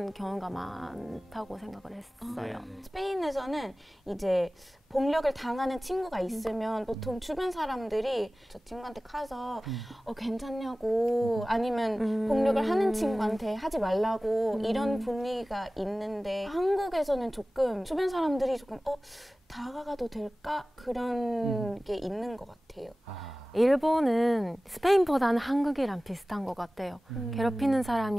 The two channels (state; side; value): normal; both; correlation 0.97